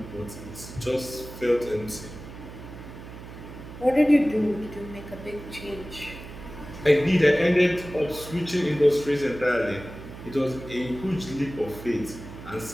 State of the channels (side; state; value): right; noise; hum, 14 dB below the sound